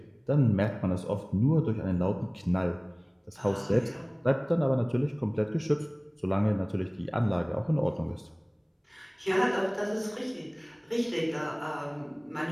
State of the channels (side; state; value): both; identical; correlation 1.00